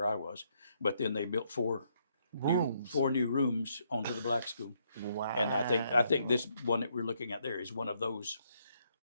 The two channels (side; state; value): both; inverted; correlation -0.73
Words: I was. But then they built four Rooms. new rooms onto the black school. Wow. And I think this one that we're looking at there is one of those.